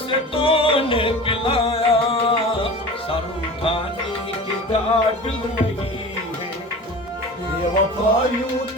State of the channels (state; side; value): normal; both; correlation 0.36